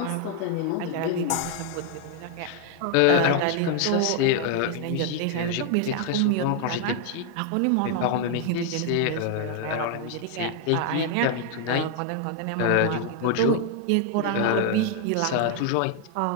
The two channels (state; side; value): different; both; correlation 0.00